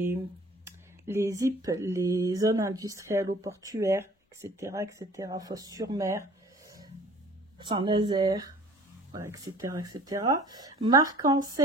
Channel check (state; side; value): normal; both; correlation 0.49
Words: ZIP, les zones industrielles ou portuaires, etc., Fos-sur-Mer, Saint-Nazaire, voilà, etc., etc. Marque